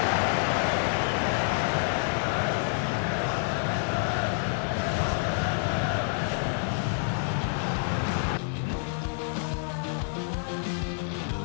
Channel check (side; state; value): right; silent; digital silence